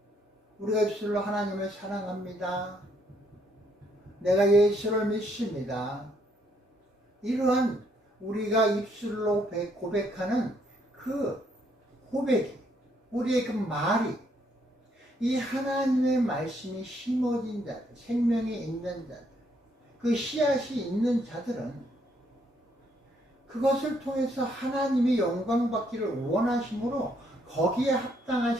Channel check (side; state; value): both; normal; correlation 0.71